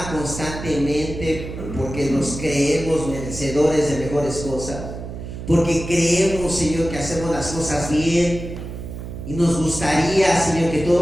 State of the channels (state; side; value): noise; right; hum, 9 dB below the sound